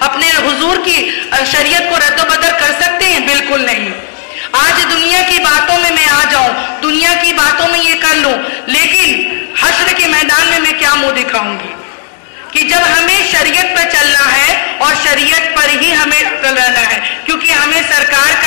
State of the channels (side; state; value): right; silent; 66 dB below the other